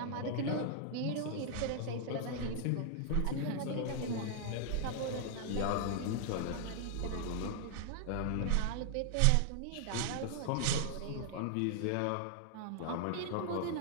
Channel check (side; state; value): both; different; correlation 0.00